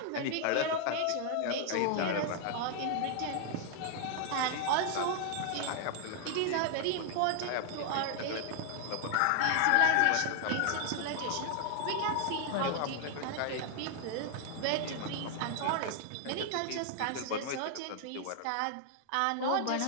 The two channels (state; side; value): different; both; correlation 0.00